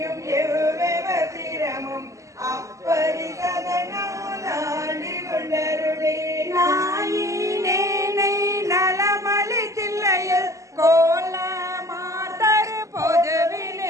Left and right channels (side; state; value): left; late; 0.16 ms